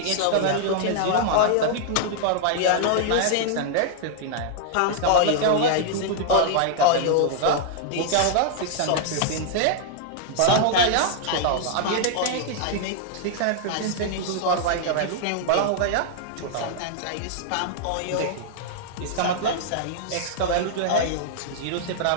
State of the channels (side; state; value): both; different; correlation -0.01